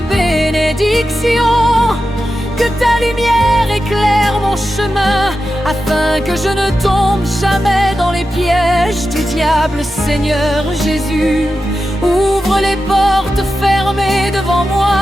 bénédiction. Que ta lumière éclaire mon chemin, afin que je ne tombe jamais dans les pièges du diable. Seigneur Jésus, ouvre les portes fermées devant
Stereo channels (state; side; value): normal; both; correlation 0.91